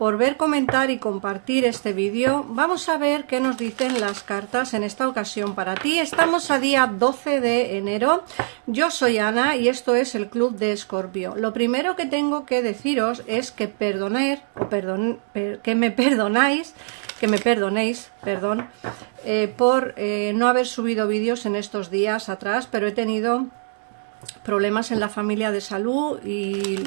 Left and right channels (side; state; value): left; silent; digital silence